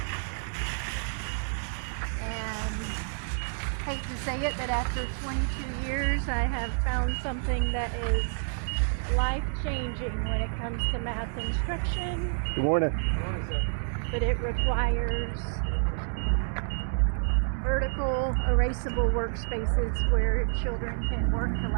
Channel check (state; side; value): silent; left; digital silence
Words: And hate to say it, but after 22 years I have found something that is life-changing when it comes to math instruction. Good morning. But it requires vertical, erasable workspaces where children can work